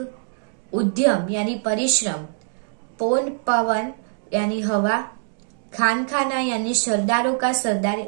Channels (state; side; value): silent; left; digital silence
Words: उद्यम यानी परिश्रम, पौन पवन यानी हवा, खानखाना यानी सरदारों का